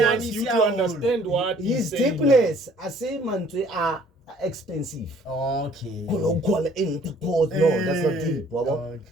you to understand what his saying. deepness. I say mantri are expensive. Okay. No, that's not deep.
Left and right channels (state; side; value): normal; both; correlation 0.57